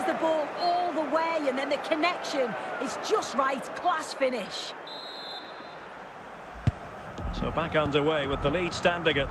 the ball all the way, and then the connection is just right. Class finish. So back underway with the lead standing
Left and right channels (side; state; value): both; identical; correlation 1.00